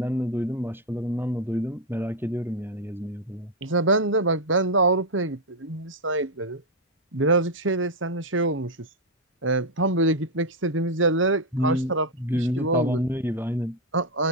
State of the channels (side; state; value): both; normal; correlation 0.02